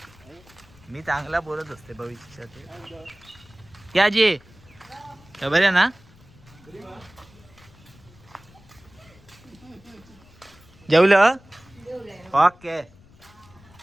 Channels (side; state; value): left; noise; rumble, 25 dB below the sound